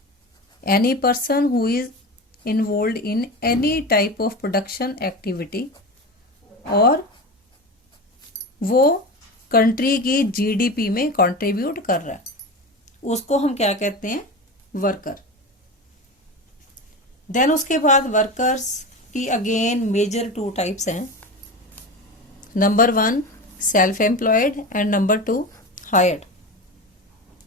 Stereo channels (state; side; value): normal; both; correlation 0.26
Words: Any person who is involve in any type of production activity, और वो कंट्री की जीडीपी में कंट्रीब्यूट कर रहा है, उसको हम क्या कहते हैं? वर्कर. देन उसके बाद वर्कर्स की अगेन मेजर टू टाइप्स हैं. Number 1 self employed and number 2 hired.